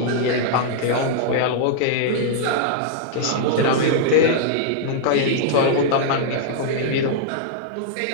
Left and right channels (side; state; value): both; different; correlation -0.02